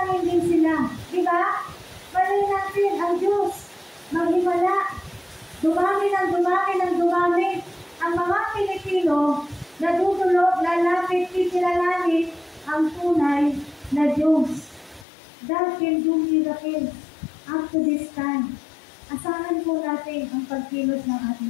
din sila. Diba? Malay natin, ang Diyos, maghimala, dumami ng dumami, ang mga Pilipino, natutulog, lalapit, kikilalangin, ang tunay na Diyos. God can do miracles up to this time. Asahan po natin ang pagkilos ng ating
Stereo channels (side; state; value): right; drops out; at 15.1 s